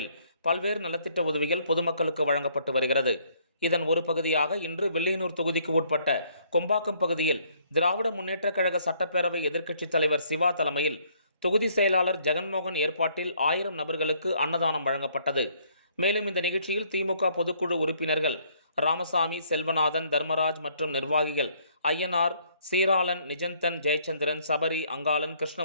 பல்வேறு நலத்திட்ட உதவிகள் பொதுமக்களுக்கு வழங்கப்பட்டு வருகிறது. இதன் ஒரு பகுதியாக இன்று வில்லியனூர் தொகுதிக்கு உட்பட்ட கொம்பாக்கம் பகுதியில் திராவிட முன்னேற்றக் கழக சட்டப்பேரவை எதிர்க்கட்சித் தலைவர் சிவா தலைமையில் தொகுதி செயலாளர் ஜெகன்மோகன் ஏற்பாட்டில் 1000 நபர்களுக்கு அன்னதானம் வழங்கப்பட்டது. மேலும் இந்த நிகழ்ச்சியில் திமுக பொதுக்குழு உறுப்பினர்கள் ராமசாமி, செல்வநாதன், தர்மராஜ் மற்றும் நிர்வாகிகள் ஐயனார், சீராளன், நிஜந்தன், ஜெயச்சந்திரன், சபரி, அங்காளன்,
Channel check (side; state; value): both; inverted; correlation -0.65